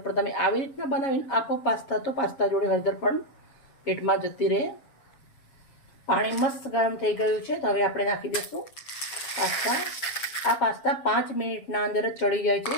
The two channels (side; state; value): right; late; 7.3 ms